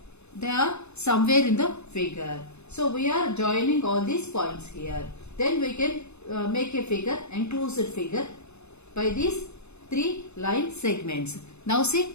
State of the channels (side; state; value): right; late; 0.81 ms